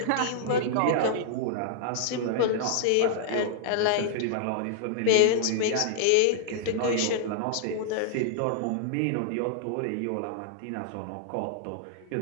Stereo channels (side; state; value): both; different; correlation -0.01